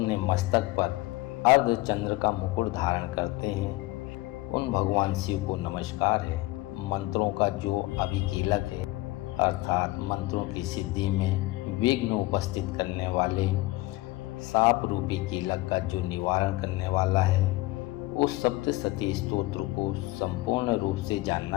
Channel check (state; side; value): quieter; right; 19.6 dB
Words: मस्तक पर अर्धचंद्र का मुकुट धारण करते हैं, उन भगवान शिव को नमस्कार है। मंत्रों का जो अभिकीलक है, अर्थात मंत्रों की सिद्धि में विघ्न उपस्थित करने वाले साप रूपी कीलक का जो निवारण करने वाला है, उस सप्तशती स्तोत्र को संपूर्ण रूप से